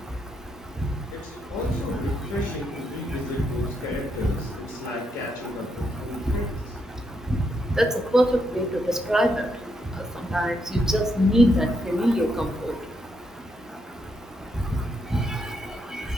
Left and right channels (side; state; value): both; normal; correlation 0.79